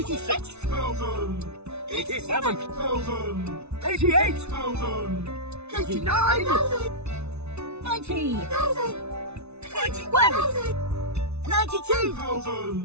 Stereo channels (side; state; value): left; late; 0.81 ms